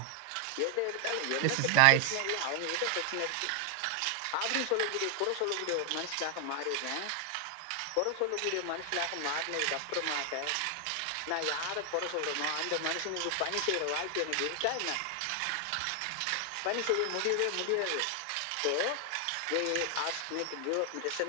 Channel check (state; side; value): different; both; correlation 0.00